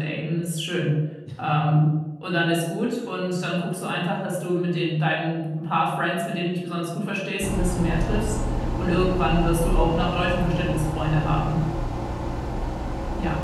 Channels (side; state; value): both; identical; correlation 1.00